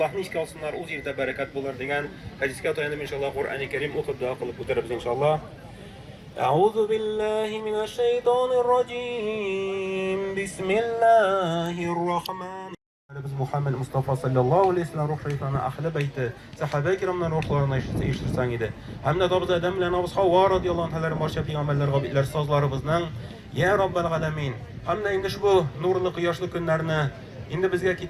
ishga olsinlar, o'z yerda barakat bo'lar degan hadisga tayanib inshaalloh Qur'oni Karim o'qib duo qilib o'tiramiz inshaalloh. A'udhu billahi minash shaytonir rojim. Bismillahir rohmanir Biz Muhammed Mustafa sallallahu aleyhi ve sellem ruh şeytanı ahli beyti sahabe-i kiramdan ruhlarına iştirsan idi. Hem de dabız Adem ile Nabız Havva radiyallahu anh'ların barşa peygamberler, gabitler, sazlarımızdan Ya Rabbel Alemin. Hem de indi şu nurlu kıyaşlı günlerini indi bizge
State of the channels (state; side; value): identical; both; correlation 1.00